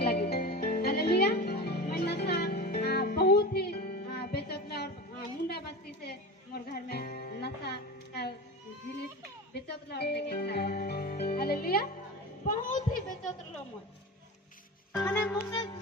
हालेलुया। मैं नशा बहुत ही बेचोतला और मुंडा बस्ती से मोर घर में नशा का जिनिस बेचोतला और लेके खाए। हालेलुया। बहुत ही बेचोतला मोर माने मुझे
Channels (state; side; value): normal; both; correlation 0.28